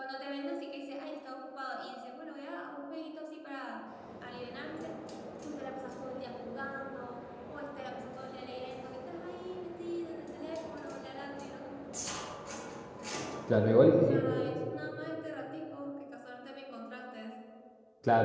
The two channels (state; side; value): identical; both; correlation 1.00